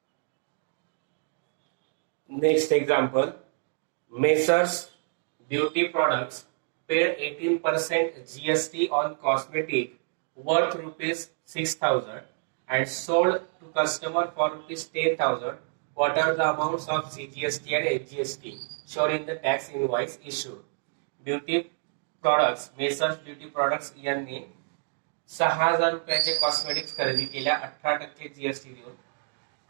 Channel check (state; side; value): silent; left; 59 dB below the other